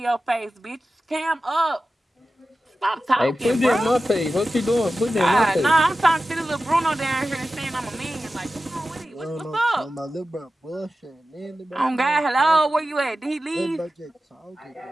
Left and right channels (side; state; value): both; normal; correlation 0.94